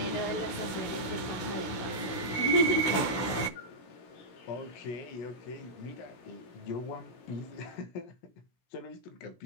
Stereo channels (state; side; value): late; right; 16 ms